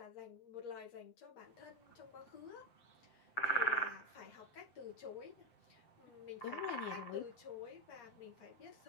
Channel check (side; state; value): right; late; 8.5 ms